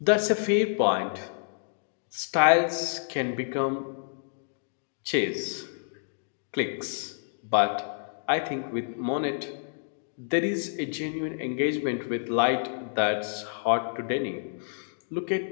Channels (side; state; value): right; silent; digital silence